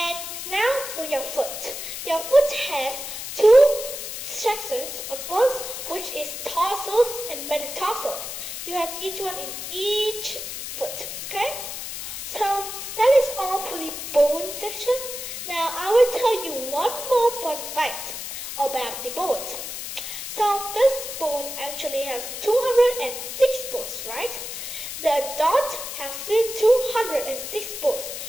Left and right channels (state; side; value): noise; left; hiss, 7 dB below the sound